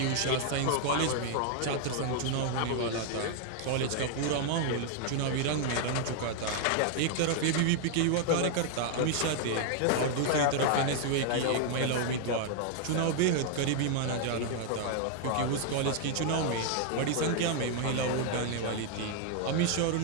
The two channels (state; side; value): different; both; correlation 0.00